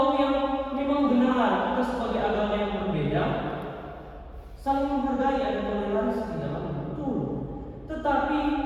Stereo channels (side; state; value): both; identical; correlation 1.00